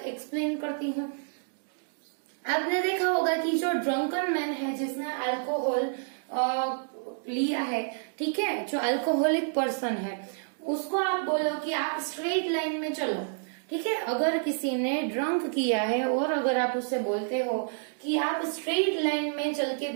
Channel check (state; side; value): silent; left; digital silence